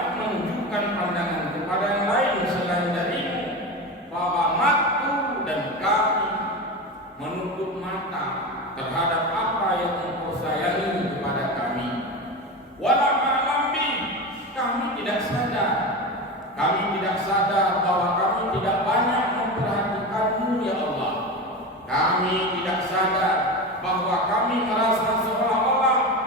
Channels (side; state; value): both; normal; correlation 0.24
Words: menunjukkan pandangan kepada yang lain selain darimu. Faghamahtu, dan kami menutup mata terhadap apa yang Engkau sayangi kepada kami. Walam a'lam bih, kami tidak sadar. Kami tidak sadar bahwa kami tidak banyak memperhatikanmu ya Allah. Kami tidak sadar bahwa kami merasa seolah-olah